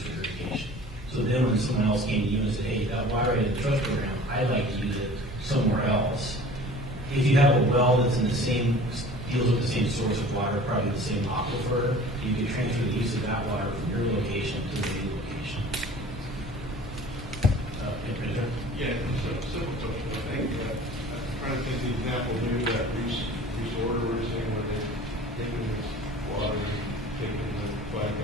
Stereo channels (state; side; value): normal; both; correlation 0.44